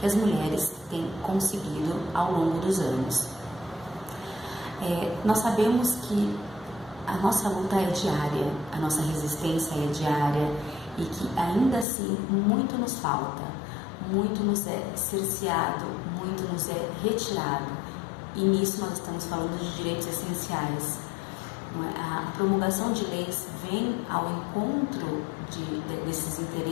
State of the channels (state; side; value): drops out; right; at 11.9 s